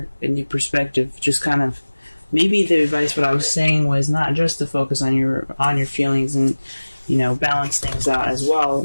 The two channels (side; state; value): both; inverted; correlation -1.00